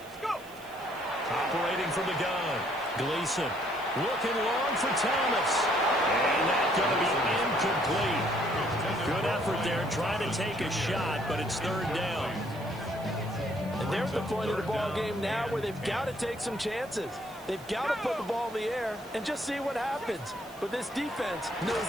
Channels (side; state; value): right; noise; hiss, 22 dB below the sound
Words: Operating from the gun. Gleason looking long for Thomas. And that's going to be incomplete. Good effort there trying to take a shot, but it's 3rd down. And they're at the point of the ball game now where they've got to take some chances. They've got to put the ball in the air and just see what happens. But this defense knows